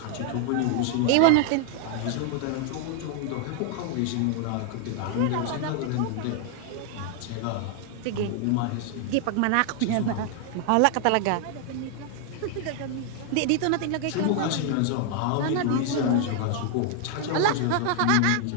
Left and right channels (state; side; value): different; both; correlation 0.00